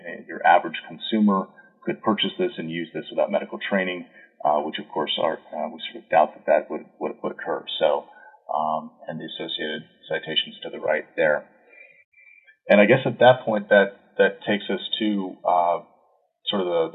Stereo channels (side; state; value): both; identical; correlation 1.00